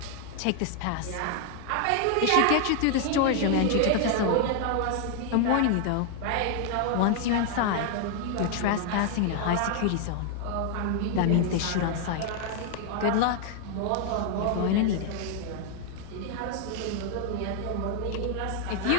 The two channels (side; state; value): both; different; correlation 0.00